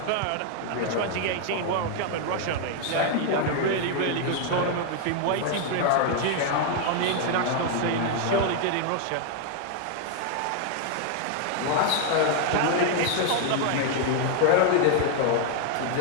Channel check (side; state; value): both; different; correlation 0.00